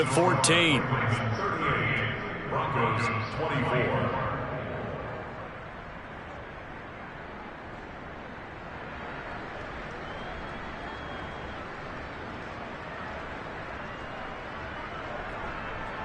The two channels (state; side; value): identical; both; correlation 1.00